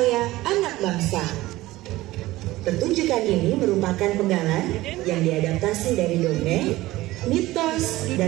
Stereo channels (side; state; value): left; quieter; 17.7 dB